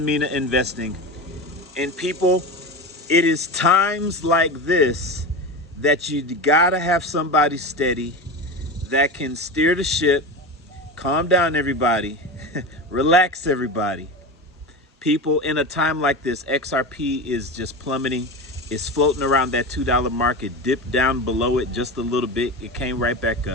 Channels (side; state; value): both; normal; correlation 0.25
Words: Mina Investing. And people, it is times like this that you gotta have somebody steady that can steer the ship, calm down everybody, relax everybody. People, in a time like this, XRP is just plummeting. It's floating around that $2 mark. It dipped down below it just a little bit. It came right back